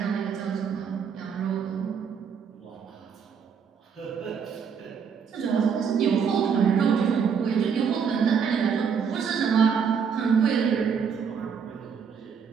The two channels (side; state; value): left; quieter; 6.7 dB